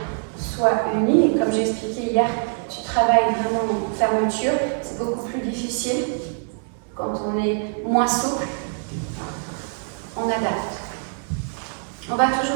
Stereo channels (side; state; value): left; silent; 56 dB below the other